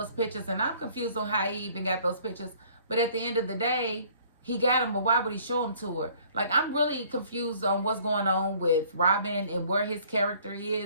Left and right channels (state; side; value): inverted; both; correlation -0.57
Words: pictures. And I'm confused on how he even got those pictures. But at the end of the day, he got them, but why would he show them to her? Like, I'm really confused on what's going on with Robin and where his character